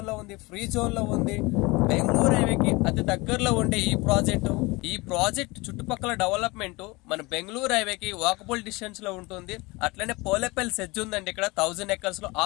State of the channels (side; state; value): right; quieter; 24.0 dB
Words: లో ఉంది, ఫ్రీ జోన్ లో ఉంది. బెంగళూరు హైవేకి అతి దగ్గరలో ఉండే ఈ ప్రాజెక్ట్ చుట్టుపక్కల డెవలప్మెంట్ మన బెంగళూరు హైవేకి వాకబుల్ డిస్టెన్స్ లో ఉంటుంది. అట్లనే పోలేపల్లి సెజ్ ఉందండి. ఇక్కడ 1000 ఎకర్స్ లో